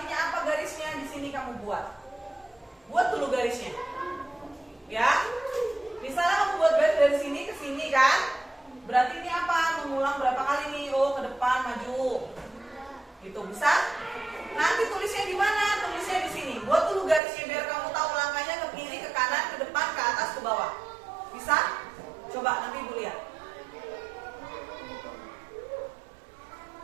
apa garisnya? Di sini kamu buat. Buat dulu garisnya. Ya. Misalnya kamu buat garis dari sini ke sini kan? Berarti ini apa? Mengulang berapa kali nih? Oh, ke depan, maju. Itu bisa? Nanti tulisnya di mana? Tulisnya di sini. Buat dulu garisnya biar kamu tahu langkahnya ke kiri, ke kanan, ke depan, ke atas, ke bawah. Bisa? Coba nanti ibu lihat.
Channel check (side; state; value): left; drops out; at 17.2 s